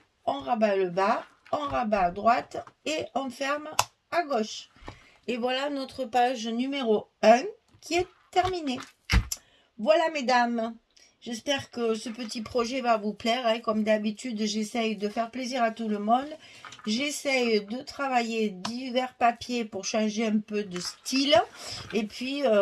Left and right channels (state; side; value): identical; both; correlation 1.00